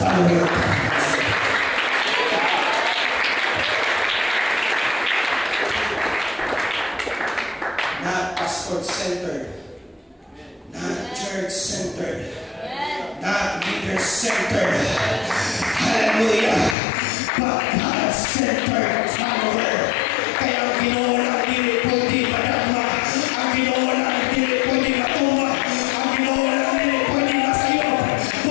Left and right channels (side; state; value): right; drops out; at 16.8 s